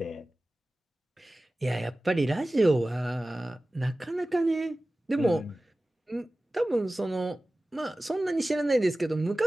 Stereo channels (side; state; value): both; normal; correlation 0.97